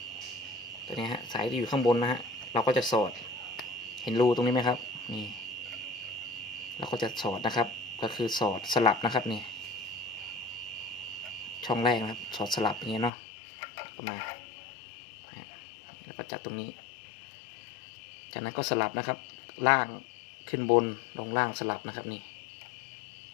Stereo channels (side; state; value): right; drops out; at 13.1 s